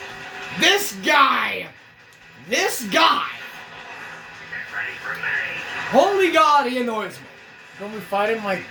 This guy! Get ready for me. Holy God, he annoys me. Don't we fight him like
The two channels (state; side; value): identical; both; correlation 1.00